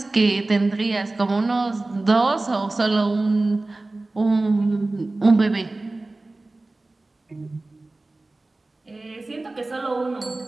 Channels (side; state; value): left; quieter; 3.0 dB